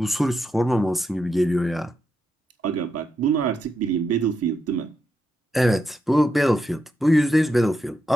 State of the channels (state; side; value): normal; both; correlation 0.84